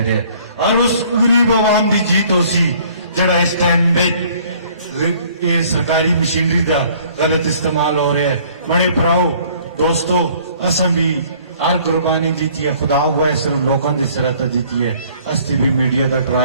اور اس غریب عوام دی جیت ہو سی جڑا اس ٹائم میں یہ سرکاری مشینری دا غلط استعمال ہو رہا ہے بڑے پراؤ دوستو اساں بھی ہر قربانی دیتی ہے خدا ہوا ہے صرف لوگوں کی سرحد دیتی ہے استی بھی میڈیا کا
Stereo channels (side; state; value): both; inverted; correlation -0.57